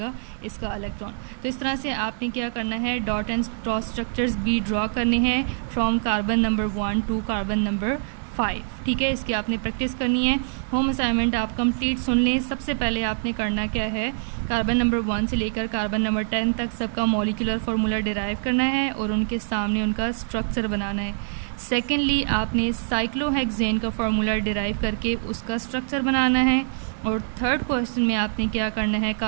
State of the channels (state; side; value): silent; left; digital silence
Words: इसका इलेक्ट्रॉन। तो इस तरह से आपने क्या करना है, डॉट एंड क्रॉस स्ट्रक्चर्स भी ड्रॉ करने हैं from carbon number 1 to carbon number 5। ठीक है, इसकी आपने प्रैक्टिस करनी है। होम असाइनमेंट आप कंप्लीट सुन लें। सबसे पहले आपने करना क्या है, कार्बन नंबर 1 से लेकर कार्बन नंबर 10 तक सबका मॉलिक्यूलर फार्मूला डिराइव करना है और उनके सामने उनका स्ट्रक्चर बनाना है। सेकेंडली आपने साइक्लोहेक्सेन का फार्मूला डिराइव करके उसका स्ट्रक्चर बनाना है। और थर्ड क्वेश्चन में आपने क्या करना है,